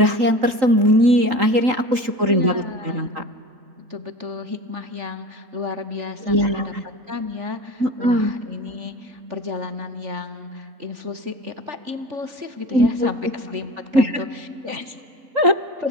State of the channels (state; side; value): late; left; 3.8 ms